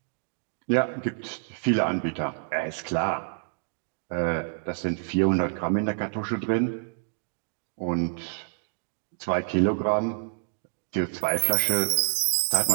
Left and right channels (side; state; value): left; silent; digital silence